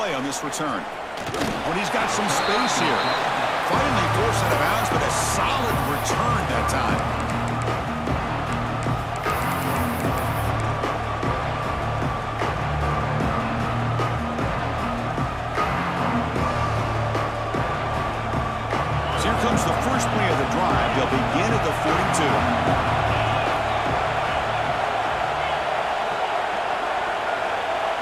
on this return. When he's got some space here. Finally forced out of bounds, but a solid return that time. So here comes the first play of the drive. They'll begin at the 42.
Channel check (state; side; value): identical; both; correlation 1.00